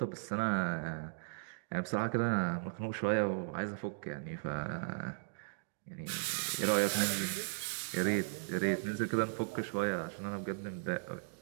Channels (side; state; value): left; silent; digital silence